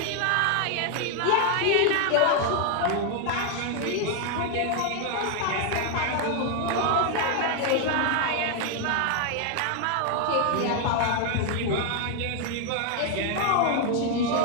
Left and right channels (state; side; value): different; both; correlation 0.00